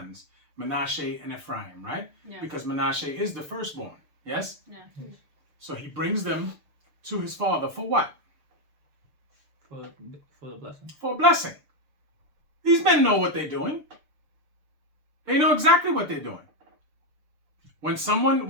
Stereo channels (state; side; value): late; left; 6.7 ms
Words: Manasseh and Ephraim, right? Yeah. Because Manasseh is the firstborn, yes? Yeah. So he brings them to his father for what? For the blessing. For a blessing. These men know what they're doing. They know exactly what they're doing. When